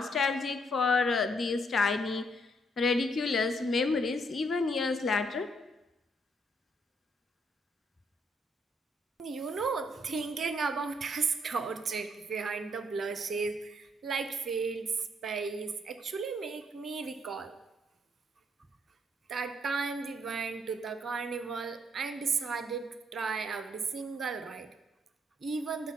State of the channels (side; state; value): both; normal; correlation 0.71